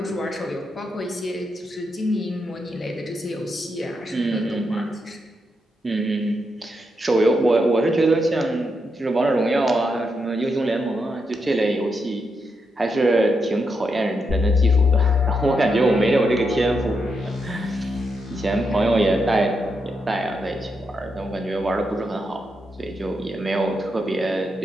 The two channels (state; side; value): normal; both; correlation 0.83